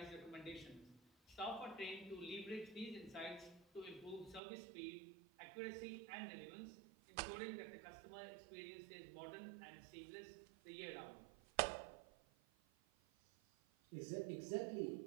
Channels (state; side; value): drops out; left; at 4.4 s